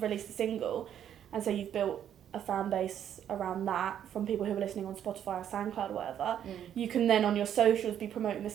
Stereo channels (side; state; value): left; quieter; 9.8 dB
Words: released the single, and so you've built a fan base around that from people who are listening on Spotify or SoundCloud or whatever, you can then on your socials be promoting the